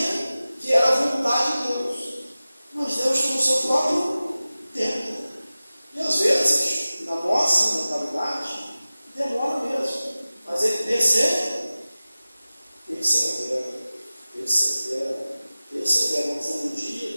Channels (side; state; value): both; inverted; correlation -0.96